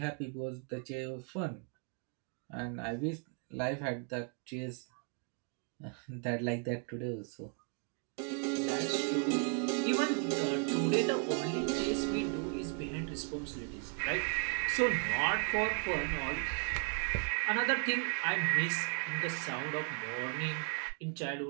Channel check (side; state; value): left; quieter; 39.6 dB